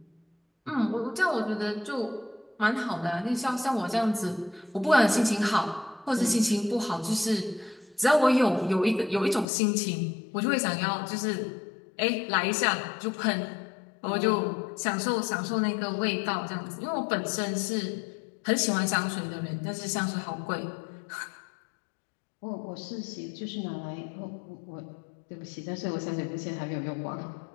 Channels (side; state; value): right; drops out; at 9.5 s